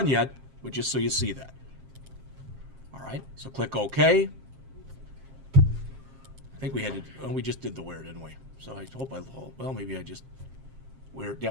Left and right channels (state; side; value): late; left; 7.5 ms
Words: yet, but just so you see that. All right, so click OK. I think we had to, we just did the where, didn't we? So I hope well, maybe I just, where,